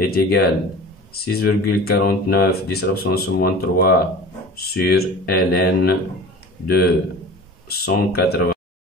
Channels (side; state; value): both; normal; correlation 0.38